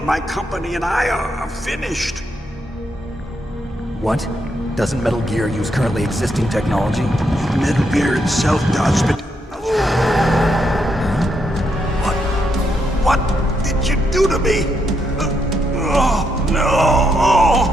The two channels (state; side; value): normal; both; correlation 0.79